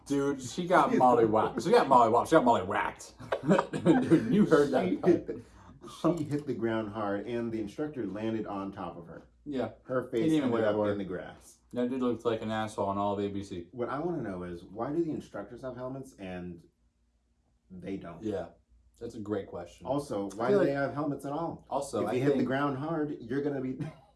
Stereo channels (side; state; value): both; identical; correlation 1.00